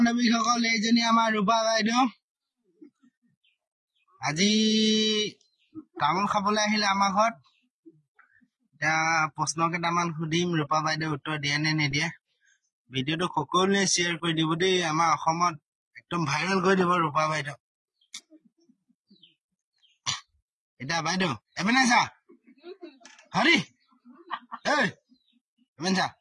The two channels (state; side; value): identical; both; correlation 1.00